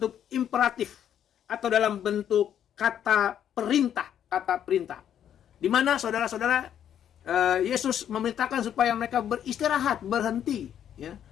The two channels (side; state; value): right; quieter; 9.7 dB